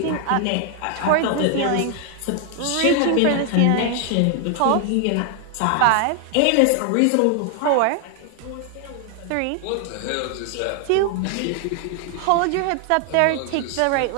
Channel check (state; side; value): different; both; correlation 0.00